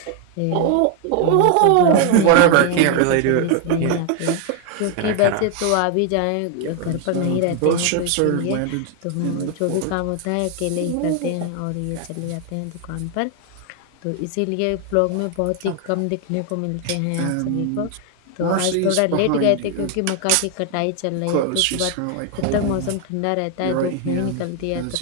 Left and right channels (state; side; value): different; both; correlation 0.00